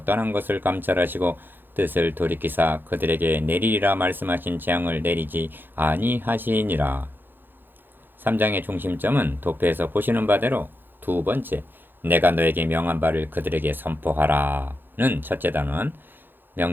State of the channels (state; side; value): late; left; 0.096 ms